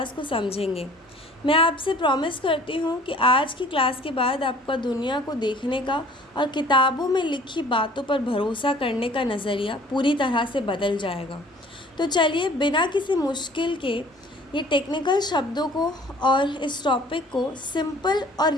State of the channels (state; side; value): normal; both; correlation 0.51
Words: को समझेंगे. मैं आपसे प्रॉमिस करती हूँ कि आज की क्लास के बाद आपका दुनिया को देखने का और किताबों में लिखी बातों पर भरोसा करने का नज़रिया पूरी तरह से बदल जाएगा. तो चलिए बिना किसी मुश्किल के ये टेक्निकल शब्दों को और इस टॉपिक को सिंपल और